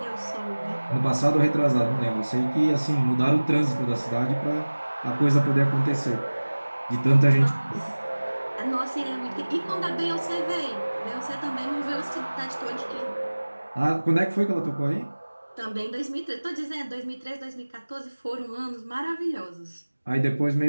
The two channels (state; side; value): inverted; both; correlation -1.00